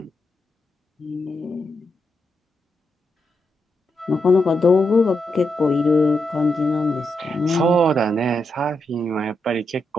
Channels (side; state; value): both; normal; correlation 0.84